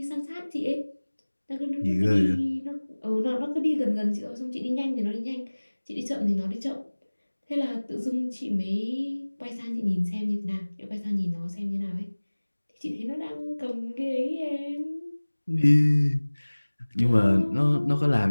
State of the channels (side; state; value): both; inverted; correlation -1.00